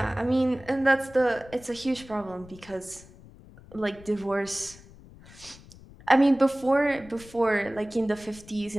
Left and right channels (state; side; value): noise; left; rumble, 21 dB below the sound